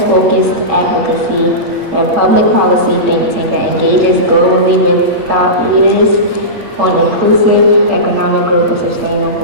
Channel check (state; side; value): late; left; 8.7 ms